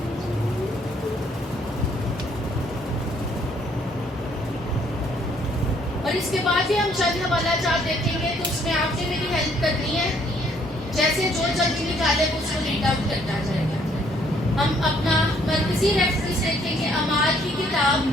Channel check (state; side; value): normal; both; correlation 0.65